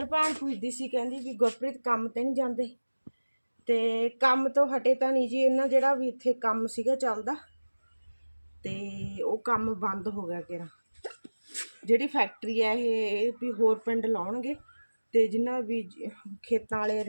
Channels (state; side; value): inverted; both; correlation -1.00